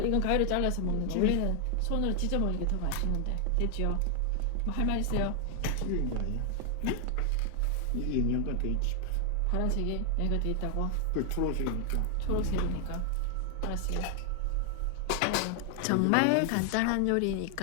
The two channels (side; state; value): both; different; correlation 0.00